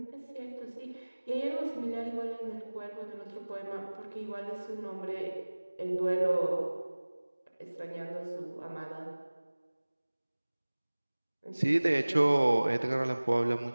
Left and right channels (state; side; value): inverted; both; correlation -1.00